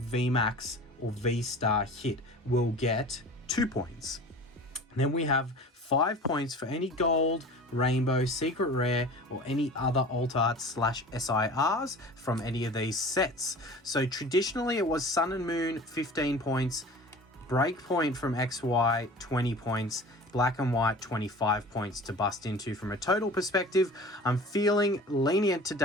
or V-star hit will get 2 points. And then we have 5 points for any gold, rainbow, secret rare, or any other alt art / SIRs from any of these sets. So traditionally it was Sun and Moon 15 points, Breakpoint from XY 20 points, Black and White 25 points to bust into from a total perspective. I'm feeling lenient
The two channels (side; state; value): both; normal; correlation 0.40